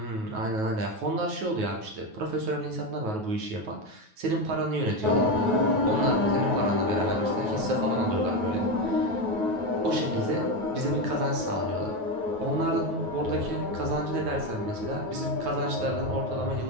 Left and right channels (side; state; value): left; late; 9.3 ms